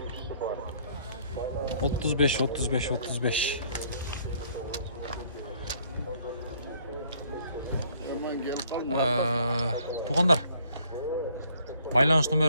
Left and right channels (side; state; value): both; inverted; correlation -0.62